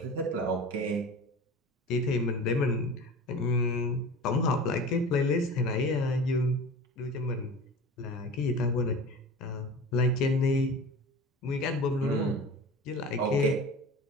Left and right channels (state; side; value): normal; both; correlation 0.35